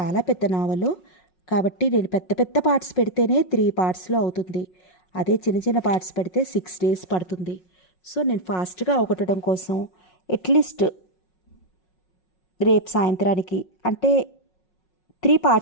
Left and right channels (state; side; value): late; right; 5.5 ms